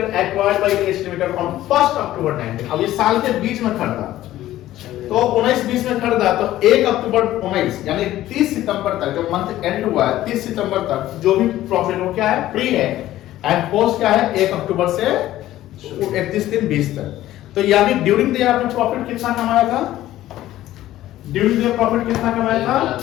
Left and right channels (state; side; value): quieter; right; 14.4 dB